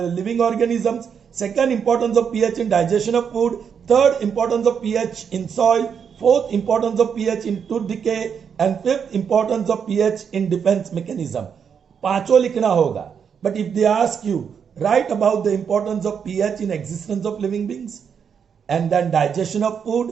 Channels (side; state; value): left; quieter; 7.1 dB